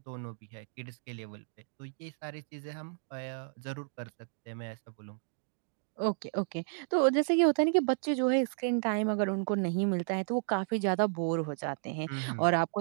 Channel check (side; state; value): left; silent; digital silence